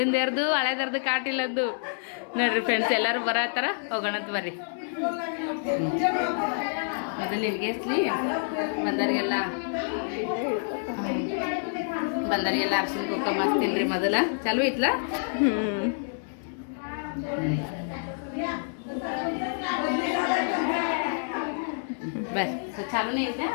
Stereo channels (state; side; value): silent; right; 60 dB below the other